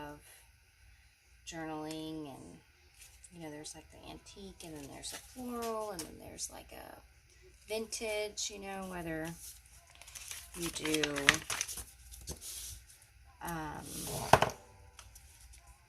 journaling, and, you know, there's like the antique, and then there's a floral, and then there's like a vintage, you know, whether you do,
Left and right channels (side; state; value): both; identical; correlation 1.00